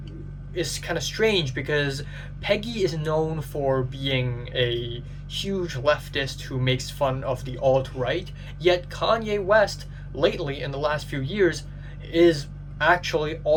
is kind of strange because Peggy is known for being a huge leftist who makes fun of the alt-right, yet Kanye West, lately in the last few years, is actually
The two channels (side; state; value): both; identical; correlation 1.00